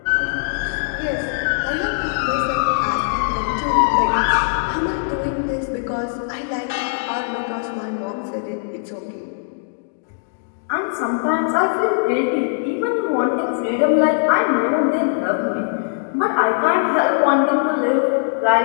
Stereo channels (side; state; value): right; silent; digital silence